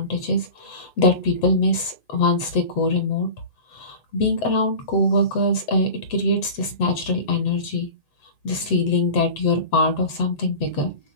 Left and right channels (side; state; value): right; late; 7.8 ms